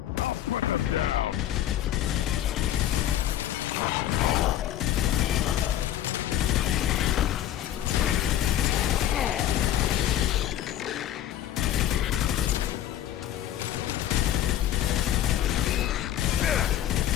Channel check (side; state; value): right; quieter; 11.9 dB